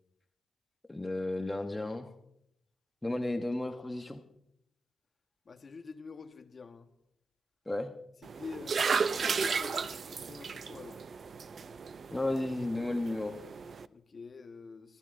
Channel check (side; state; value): both; normal; correlation 0.90